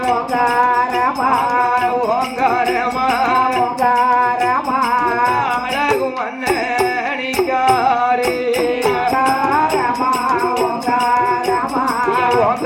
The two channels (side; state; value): both; identical; correlation 1.00